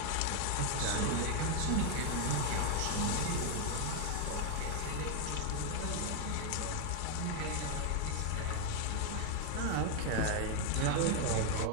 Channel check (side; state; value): both; different; correlation 0.01